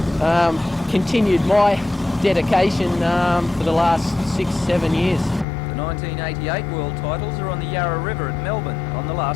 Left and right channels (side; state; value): right; drops out; at 5.5 s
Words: continued my dedication for the last 6-7 years. The 1988 world titles are on the Yarra River at Melbourne on the